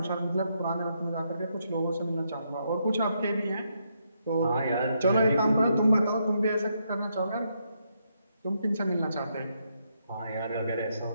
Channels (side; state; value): both; inverted; correlation -0.78